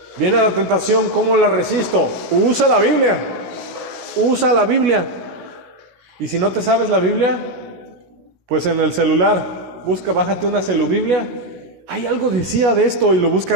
Viene la tentación, ¿cómo la resisto? Usa la Biblia. Usa la Biblia. Y si no te sabes la Biblia, Pues en el celular, bájate una celubiblia. Hay algo decía de esto y lo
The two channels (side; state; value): left; late; 16 ms